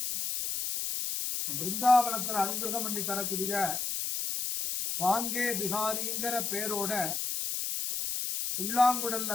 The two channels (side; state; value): left; noise; hiss, 2 dB below the sound